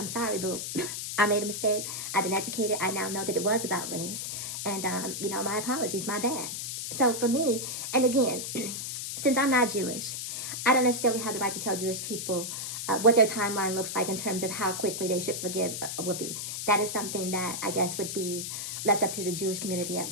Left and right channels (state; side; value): noise; left; hiss, 5 dB below the sound